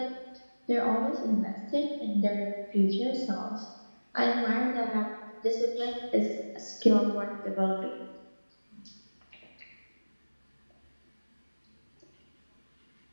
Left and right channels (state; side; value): inverted; both; correlation -1.00